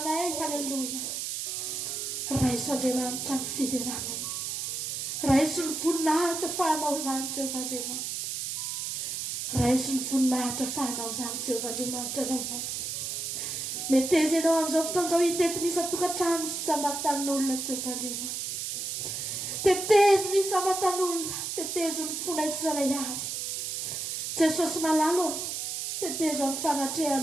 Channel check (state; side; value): noise; right; hiss, 3 dB below the sound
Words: Haleluia. Raha izy Andriamanitra no fideranay. Raha izy no voninahitra fahanao zany Jehovah Andriamanitra. Raha izy no voninahitra fahanao zany Jehovah Andriamanitra rainay. Meteza ianao amin'izao fotoan'izao hitetinisa tokantrano sy samatan'olona Jehovah Andriamanitra. Tetezo ny samatan'olona. Tetezo ny fonay tsirairay avy. Jesosy malalo. Tetezo amin'ny